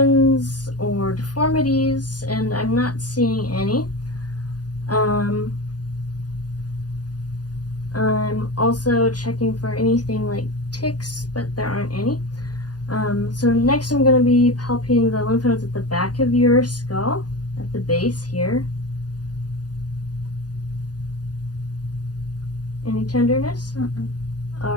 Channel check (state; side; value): late; right; 0.69 ms